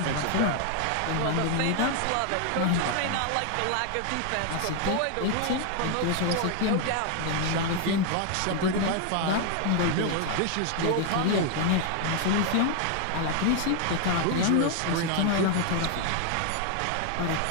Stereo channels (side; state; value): both; different; correlation 0.00